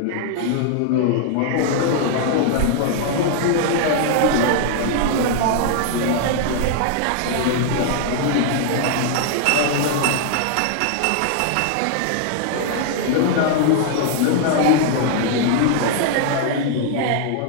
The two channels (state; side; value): different; both; correlation 0.00